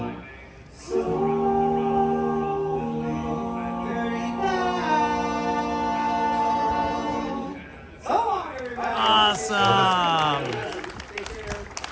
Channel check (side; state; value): both; identical; correlation 1.00